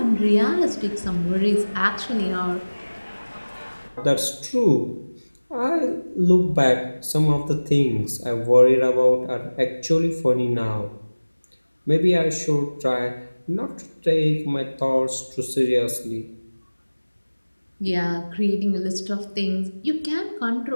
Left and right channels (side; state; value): both; inverted; correlation -1.00